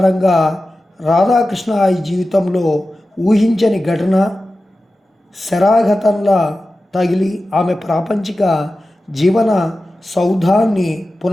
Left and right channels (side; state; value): both; normal; correlation 0.94